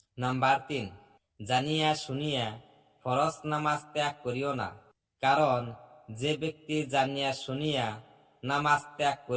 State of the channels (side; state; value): both; identical; correlation 1.00